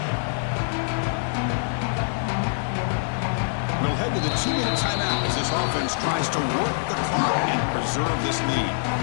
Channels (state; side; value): silent; right; digital silence